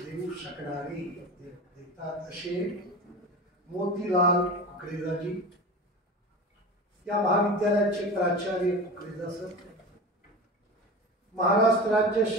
देऊ शकणारे देतात असे मोतीलाल कुकरेजाजी, या महाविद्यालयाचे प्राचार्य कुकरेजा सर, महाराष्ट्र राज्य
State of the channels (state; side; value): normal; both; correlation 0.31